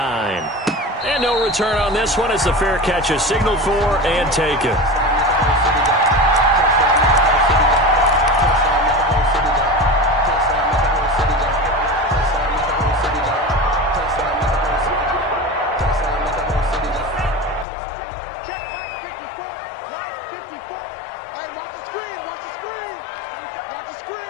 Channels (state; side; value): drops out; right; at 17.7 s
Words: And no return on this one as the fair catch is signaled for and taken.